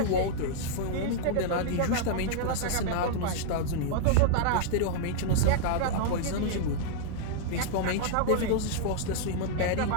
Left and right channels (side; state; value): both; different; correlation -0.01